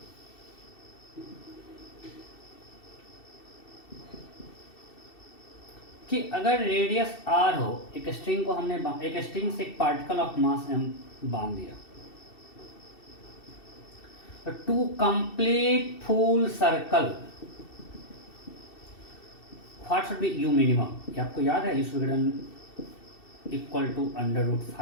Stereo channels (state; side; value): late; right; 2.7 ms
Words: कि अगर रेडियस r हो, एक स्ट्रिंग को हमने एक स्ट्रिंग से एक पार्टिकल ऑफ मास m बांध दिया, तो to complete full circle what should be u minimum? ये आपको याद है? u विघटन इक्वल टू